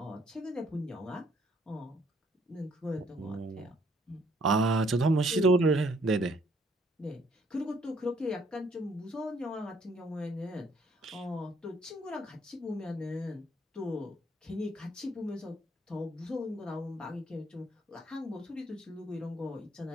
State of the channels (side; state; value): both; normal; correlation 0.65